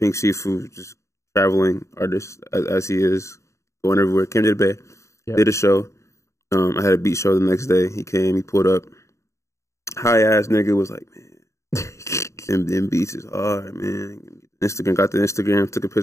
Siifu, just traveling artist as he is, going everywhere. Came to the Bay, did a show. I had a beat show the next day. He came, he pulled up. High ass nigga was like, man, them beats is hard, man. Got the Instagram, took a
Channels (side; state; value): right; late; 0.14 ms